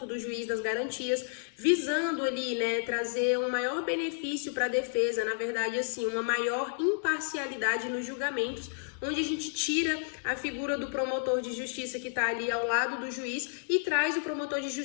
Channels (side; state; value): right; silent; digital silence